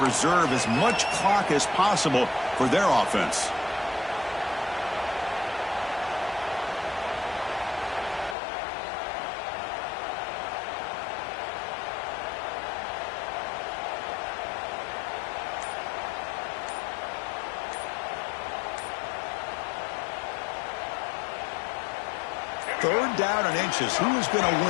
as much clock as possible for their offense. Third down and inches. Who is going to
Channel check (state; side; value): drops out; right; at 8.3 s